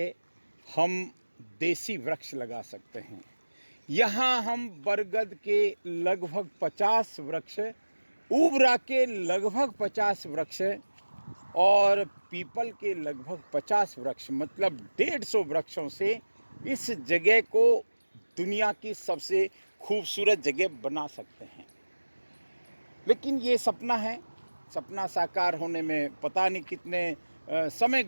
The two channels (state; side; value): inverted; both; correlation -1.00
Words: हम देसी वृक्ष लगा सकते हैं। यहाँ हम बरगद के लगभग 50 वृक्ष, उबरा के लगभग 50 वृक्ष और पीपल के लगभग 50 वृक्ष, मतलब 150 वृक्षों से इस जगह को दुनिया की सबसे खूबसूरत जगह बना सकते हैं। लेकिन ये सपना है, सपना साकार होने में पता नहीं कितने समय